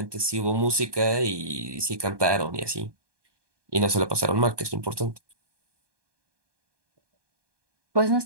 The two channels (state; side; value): late; left; 1.2 ms